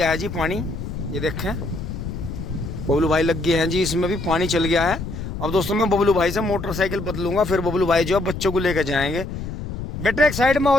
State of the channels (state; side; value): noise; left; rumble, 7 dB below the sound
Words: है जी पानी। ये देखें, बबलू भाई लग गए हैं जी, इसमें भी पानी चल गया है। अब दोस्तों मैं बबलू भाई से मोटरसाइकिल बदलूंगा, फिर बबलू भाई जो है बच्चों को लेकर जाएंगे। बेटे एक साइड में